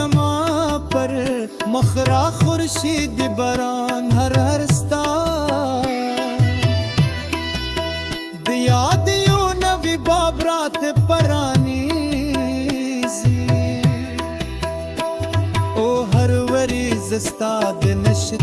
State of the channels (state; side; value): identical; both; correlation 1.00